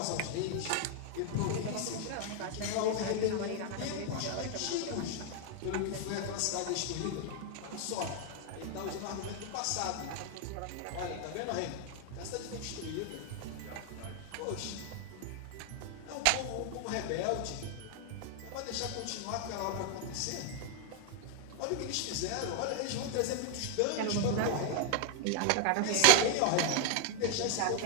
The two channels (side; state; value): both; different; correlation 0.01